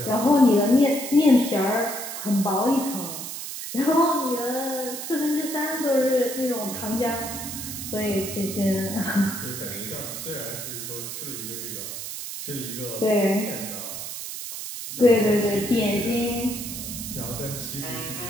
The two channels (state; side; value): noise; right; hiss, 7 dB below the sound